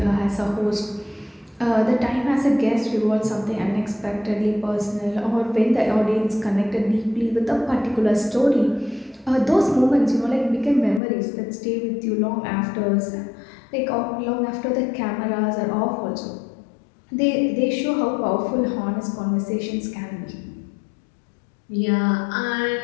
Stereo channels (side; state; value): right; drops out; at 11.0 s